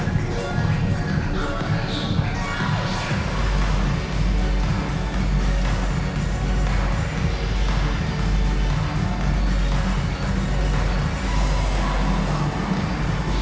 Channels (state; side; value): identical; both; correlation 1.00